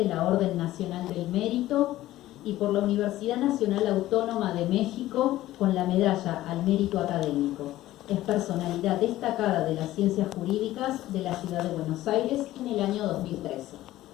la Orden Nacional del Mérito y por la Universidad Nacional Autónoma de México con la medalla al mérito académico. Es personalidad destacada de las ciencias jurídicas de la ciudad de Buenos Aires en el año 2013.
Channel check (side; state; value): right; quieter; 15.3 dB